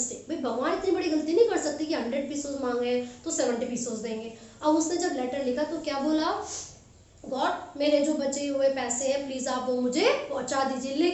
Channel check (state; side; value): identical; both; correlation 1.00